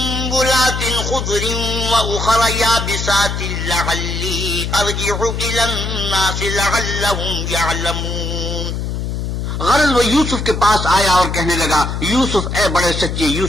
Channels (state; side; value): noise; left; hum, 3 dB below the sound